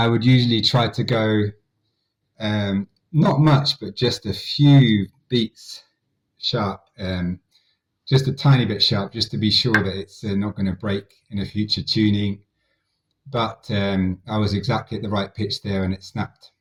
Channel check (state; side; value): identical; both; correlation 1.00